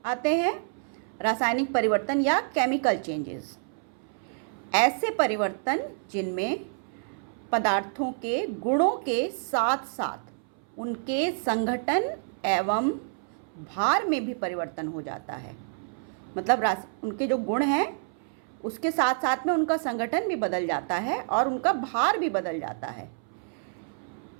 आते हैं। रासायनिक परिवर्तन या केमिकल चेंजेस, ऐसे परिवर्तन जिनमें पदार्थों के गुणों के साथ साथ उनके संघटन एवं भार में भी परिवर्तन हो जाता है। मतलब उनके जो गुण हैं उसके साथ साथ में उनका संगठन भी बदल जाता है और उनका भार भी बदल जाता है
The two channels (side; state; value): left; silent; 59 dB below the other